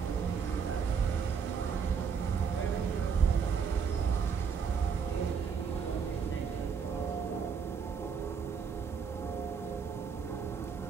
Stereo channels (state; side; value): quieter; left; 6.3 dB